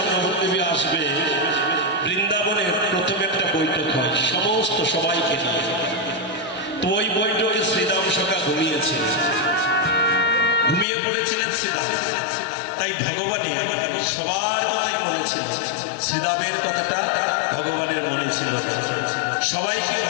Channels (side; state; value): right; drops out; at 10.9 s